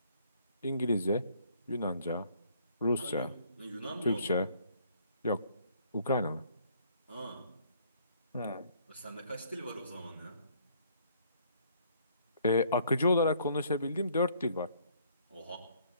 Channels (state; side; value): inverted; both; correlation -0.62